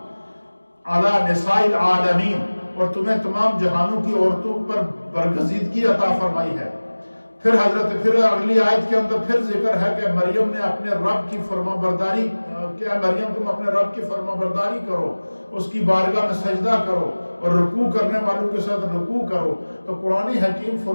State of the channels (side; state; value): both; inverted; correlation -1.00